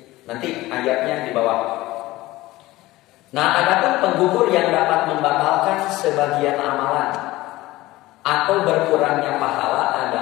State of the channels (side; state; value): right; quieter; 18.2 dB